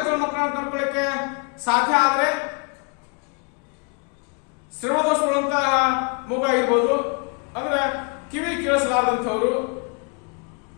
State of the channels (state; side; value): quieter; right; 34.2 dB